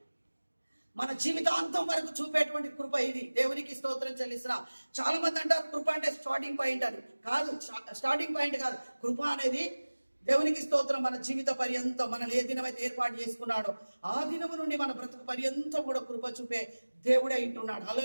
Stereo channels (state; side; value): inverted; both; correlation -1.00